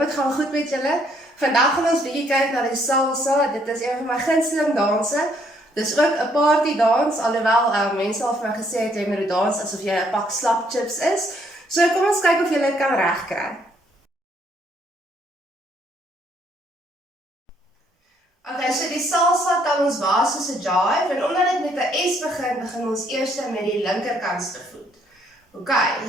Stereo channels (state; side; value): normal; both; correlation 0.68